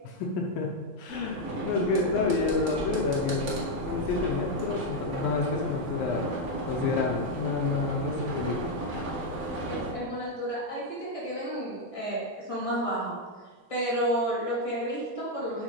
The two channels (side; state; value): both; normal; correlation 0.02